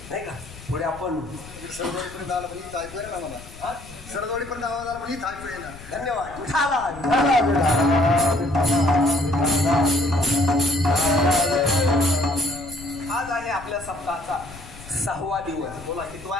नाही का पुढे आपण सरदोडीपर्यंत आला पण इथं ऐकू ना मला. सरदोडीपर्यंत आवाज आला पण इथं ऐकू ना. धन्यवाद. आज आहे आपल्या सप्ताहाचा 6वा दिवस. बोला कितवा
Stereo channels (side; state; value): left; noise; rumble, 17 dB below the sound